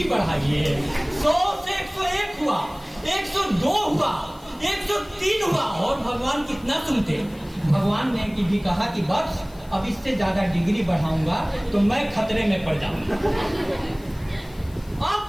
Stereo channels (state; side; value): noise; left; hiss, 26 dB below the sound